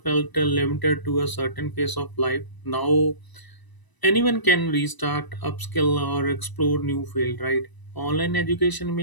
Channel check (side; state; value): right; late; 1.0 ms